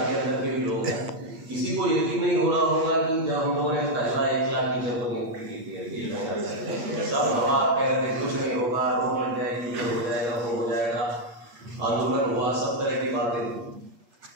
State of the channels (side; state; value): left; late; 8.5 ms